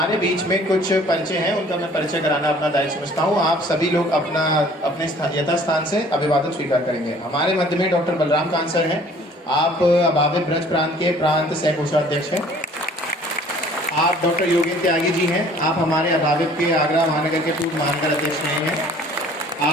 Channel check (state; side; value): normal; both; correlation 0.53